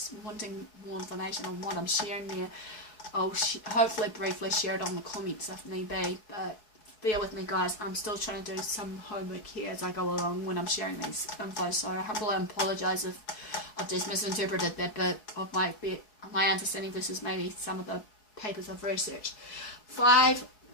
wanting more information on what I'm sharing there, I'll hopefully briefly share it on the comments if need be. But bear with me, guys, I'm still trying to do some homework here as I go along when I'm sharing these info, so I humbly apologise if I've just misinterpreted that bit of my understanding versus maybe some of the papers I've researched. 5,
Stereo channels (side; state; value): right; late; 4.6 ms